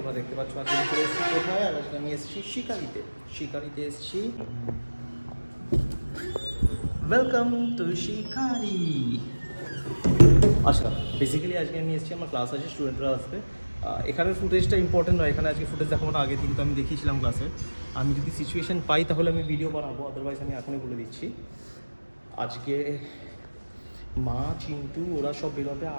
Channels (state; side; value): inverted; both; correlation -1.00